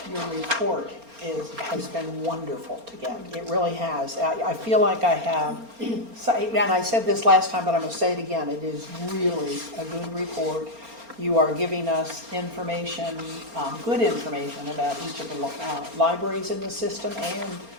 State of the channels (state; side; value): late; left; 4.3 ms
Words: your report has been wonderful to get. It really has. I feel like I have, and I said this last time, but I'm going to say it again. It is really a good report. You are giving us information, good information about each of the libraries in the system and